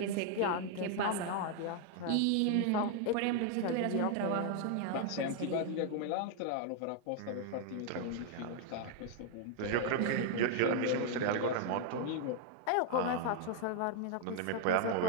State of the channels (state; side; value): different; both; correlation 0.00